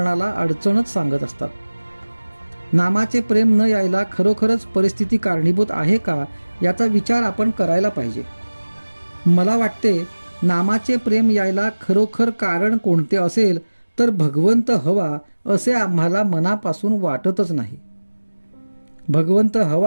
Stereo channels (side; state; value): both; inverted; correlation -1.00